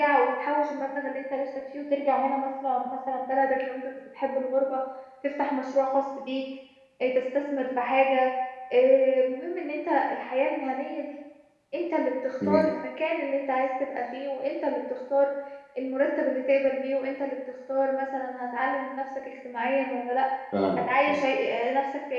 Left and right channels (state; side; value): identical; both; correlation 1.00